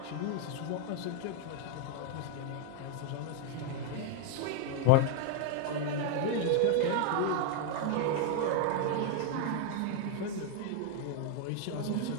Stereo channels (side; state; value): both; different; correlation 0.01